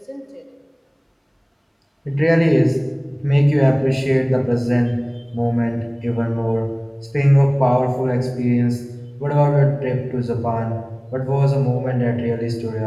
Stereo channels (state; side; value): identical; both; correlation 1.00